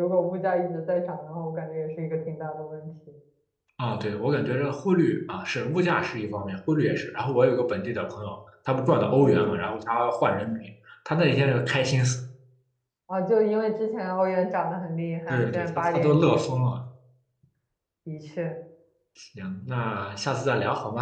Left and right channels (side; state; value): both; identical; correlation 1.00